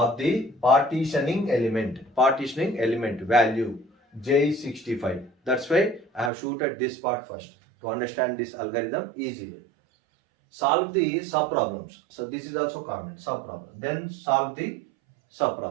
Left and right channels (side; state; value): left; drops out; at 6.3 s